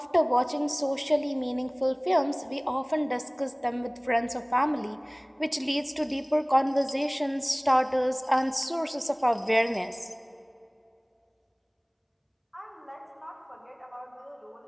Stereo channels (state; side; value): identical; both; correlation 1.00